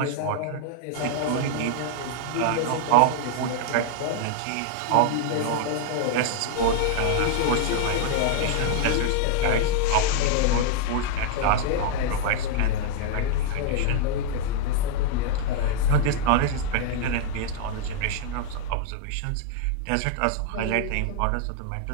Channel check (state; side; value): different; both; correlation 0.00